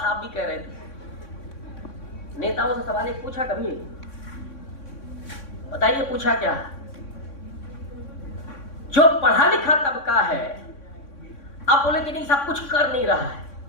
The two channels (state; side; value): late; right; 3.6 ms